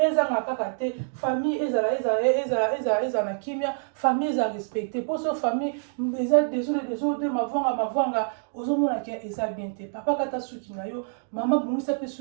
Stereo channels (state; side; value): silent; left; digital silence